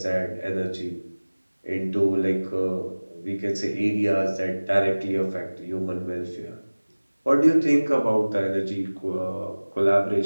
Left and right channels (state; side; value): inverted; both; correlation -1.00